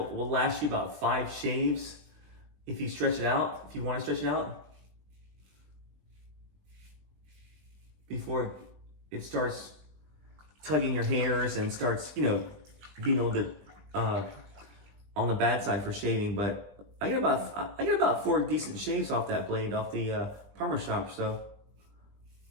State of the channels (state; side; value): late; left; 20 ms